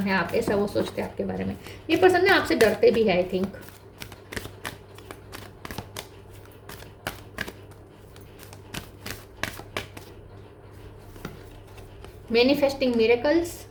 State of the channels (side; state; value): both; identical; correlation 1.00